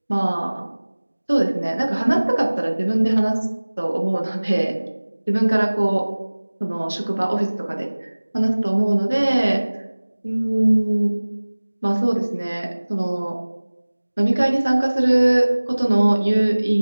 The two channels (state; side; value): inverted; both; correlation -1.00